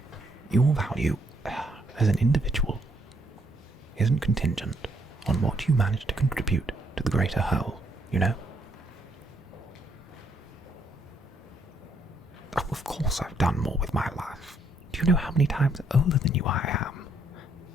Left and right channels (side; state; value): both; normal; correlation 0.71